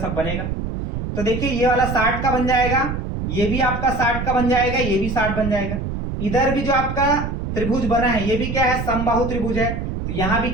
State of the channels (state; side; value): noise; right; rumble, 4 dB below the sound